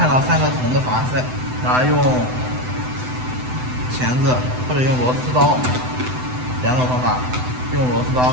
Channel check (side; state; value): left; late; 7.9 ms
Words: 到3个铜的阀塞，然后用钳子或者用螺丝刀，2种方法，用螺丝刀